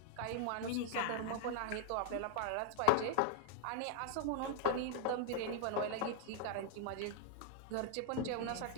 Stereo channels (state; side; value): different; both; correlation 0.00